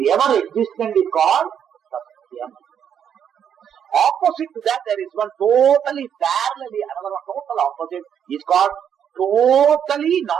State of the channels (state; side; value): quieter; left; 8.5 dB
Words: ever existent, is called Satyam. Opposite to that, there is one totally parallelly, another one total opposite, is called totally